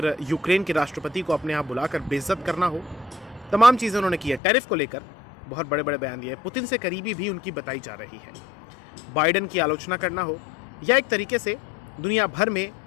यूक्रेन के राष्ट्रपति को अपने यहाँ बुलाकर बेइज्जत करना हो, तमाम चीज़ें उन्होंने की है। टैरिफ को लेकर बहुत बड़े बड़े बयान दिए, पुतिन से करीबी भी उनकी बताई जा रही है। बाइडेन की आलोचना करना हो या एक तरीके से दुनिया भर में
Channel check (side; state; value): right; drops out; at 4.4 s